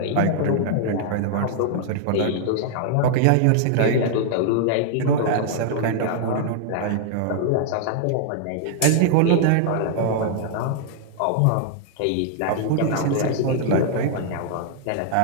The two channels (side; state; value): both; different; correlation -0.01